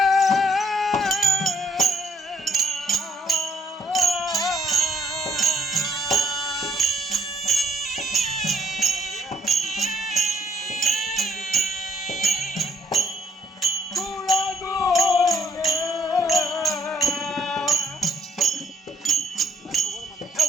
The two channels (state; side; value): normal; both; correlation 0.67